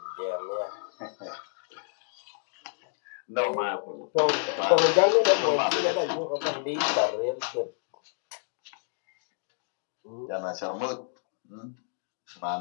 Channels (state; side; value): silent; right; digital silence